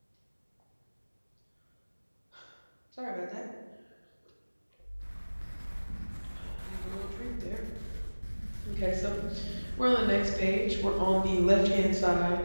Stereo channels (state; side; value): inverted; both; correlation -1.00